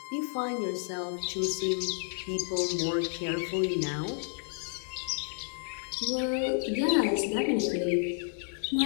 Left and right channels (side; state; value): right; silent; digital silence